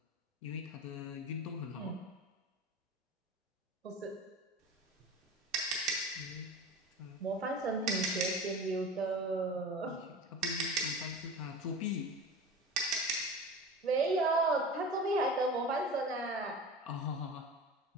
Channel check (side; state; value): both; normal; correlation 0.33